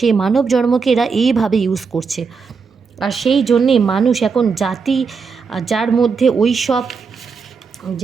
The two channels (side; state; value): left; quieter; 5.2 dB